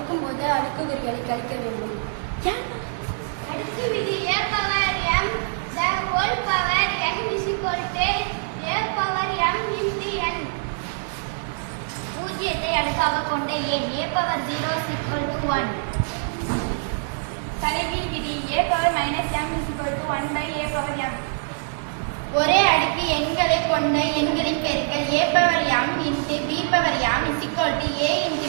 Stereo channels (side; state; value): left; silent; digital silence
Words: போது அடுக்குக்குறிகளை கழிக்க வேண்டும். அடுக்கு விதி a power m the whole power n is equal to a power m into n. பூஜ்ஜியத்தை அடுக்காக கொண்ட எண் a power 0 is equal to 1. தலைகீழ் விதி a power minus m is equal to 1 by a power m. ஒரே அடுக்கு எண்களை கொண்ட எண்களின் பெருக்கல் a power m into b power m is equal to a into